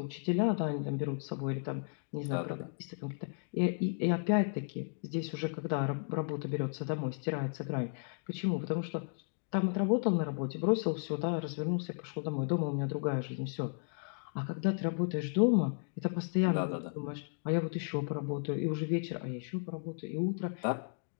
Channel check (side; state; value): right; silent; digital silence